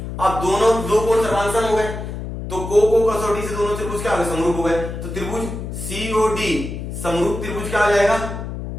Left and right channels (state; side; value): noise; left; hum, 7 dB below the sound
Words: अब दोनों दो कोण सर्वांगसम हो गए, तो को कसौटी से दोनों त्रिभुज क्या हो गए, समरूप हो गए। तो त्रिभुज COD समरूप त्रिभुज क्या आ जाएगा,